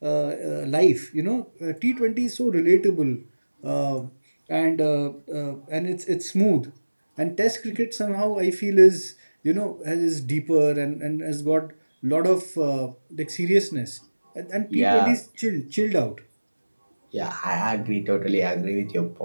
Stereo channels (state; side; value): inverted; both; correlation -1.00